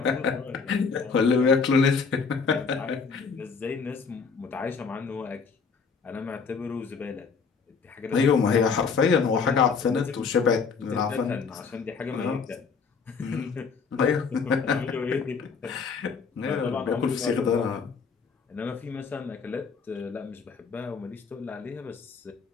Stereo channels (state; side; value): quieter; right; 5.4 dB